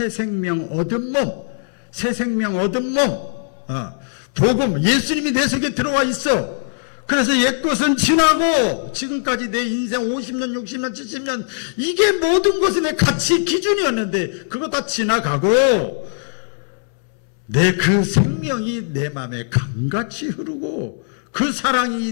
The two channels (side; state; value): right; silent; 63 dB below the other